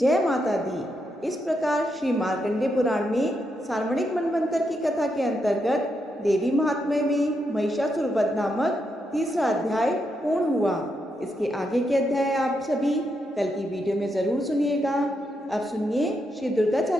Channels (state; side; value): normal; both; correlation 0.82